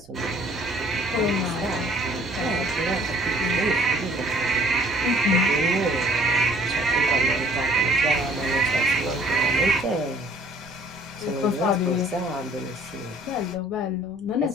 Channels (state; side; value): noise; right; rumble, 27 dB below the sound